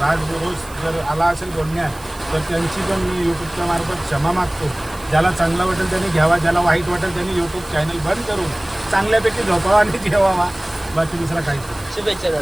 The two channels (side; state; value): right; noise; hiss, 20 dB below the sound